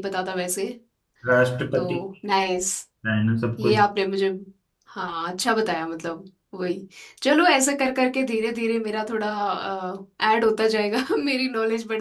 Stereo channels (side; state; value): both; identical; correlation 1.00